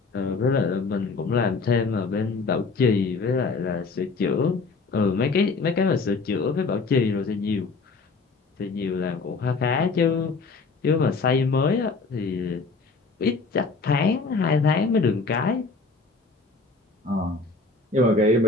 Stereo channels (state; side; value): quieter; right; 4.1 dB